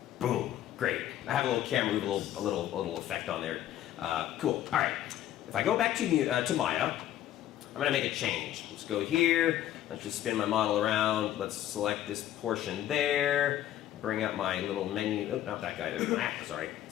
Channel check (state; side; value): quieter; right; 12.3 dB